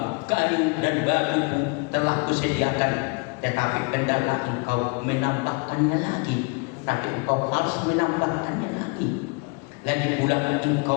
Kayu dan batu pun telah kusediakan, tetapi hendaklah engkau menambahkannya lagi. Tapi engkau harus menambahkannya lagi. Lagi pula engkau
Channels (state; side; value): quieter; right; 32.4 dB